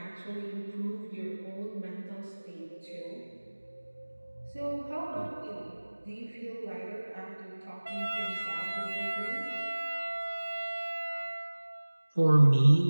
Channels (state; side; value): inverted; both; correlation -1.00